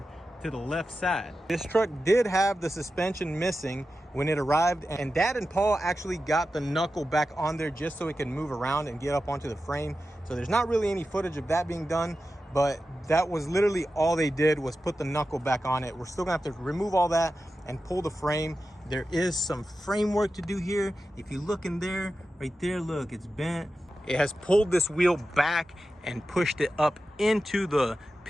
to the left side. This truck did have the suspension missing when it arrived, and Dad and Paul actually got the knuckle back on there just so it can move around and get up onto the frame. So there's not really any footage of that being done, but that was literally all they did was put the knuckle back on it. We're still gonna have to remove all that and pull the frame. There is some framework to do here. If you look in there, right there, look, it's bent. It has pulled this wheel back and pushed it up into the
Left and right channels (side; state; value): both; normal; correlation 0.92